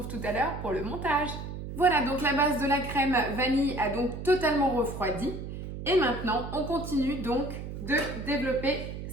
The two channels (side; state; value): right; noise; hum, 8 dB below the sound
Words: tout à l'heure pour le montage. Voilà, donc la base de la crème vanille a donc totalement refroidi. Et maintenant, on continue donc de développer